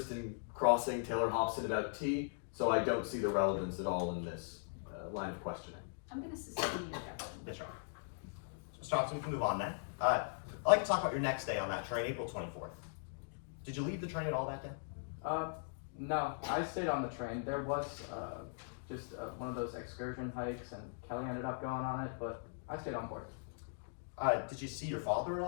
in crossing Taylor Hobson about tea, so I don't see the relevance at all in this line of questioning. I'm going to sustain the objection. Yes, Your Honor. So, Mr. Hobson, we can move on then. I'd like to talk about your next day on that train, April 24th. Did you leave the train at all that day? No, I stayed on the train. There was just one of those excursion hikes, and Kelly ended up going on it, but I stayed on board. Did you see your father at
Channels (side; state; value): right; silent; digital silence